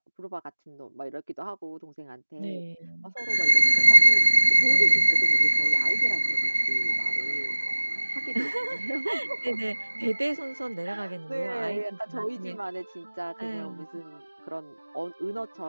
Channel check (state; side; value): inverted; both; correlation -1.00